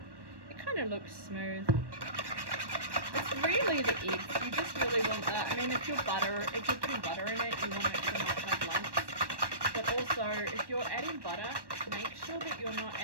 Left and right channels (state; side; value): late; left; 1.1 ms